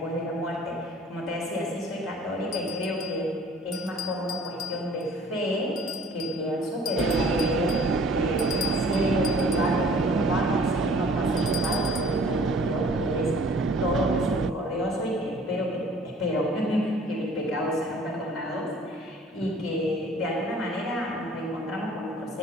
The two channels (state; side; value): normal; both; correlation 0.52